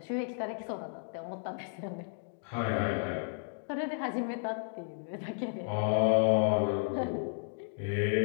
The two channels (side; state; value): right; silent; digital silence